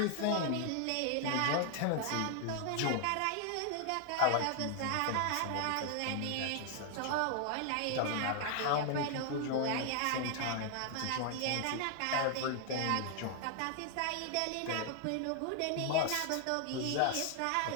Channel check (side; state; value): both; different; correlation 0.00